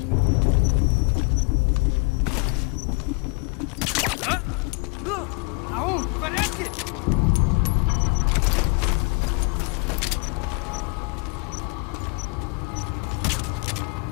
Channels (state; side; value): quieter; right; 30.7 dB